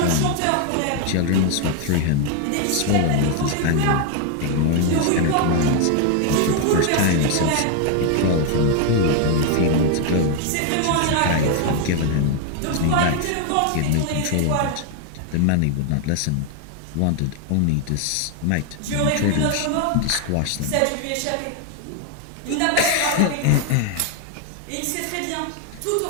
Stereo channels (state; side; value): different; both; correlation 0.01